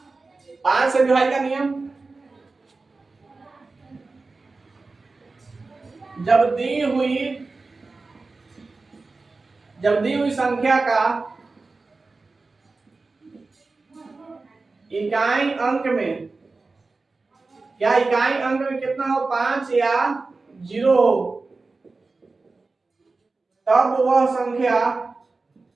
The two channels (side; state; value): left; quieter; 3.7 dB